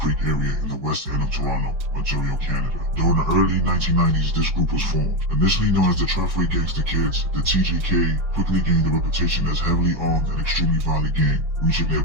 area in the west end of Toronto, Ontario, Canada. During the early 1990s, this group was formed. Initially known as the TRETHEWEY Gangsta Kids, the TGK quickly gained a reputation as heavily armed and extremely violent gang, reaching their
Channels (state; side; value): late; left; 5.1 ms